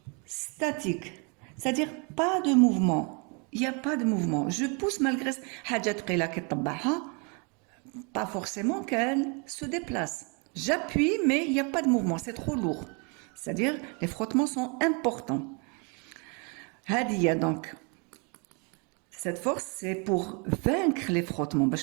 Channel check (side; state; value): left; quieter; 34.1 dB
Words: statique. C'est-à-dire pas de mouvement. Il n'y a pas de mouvement. Je pousse malgré حاجة ثقيلة كي طبعها pas forcément qu'elle se déplace. J'appuie mais il n'y a pas de mouvement, c'est trop lourd. C'est-à-dire les frottements sont importants. هذه donc cette force c'est pour vaincre les frottements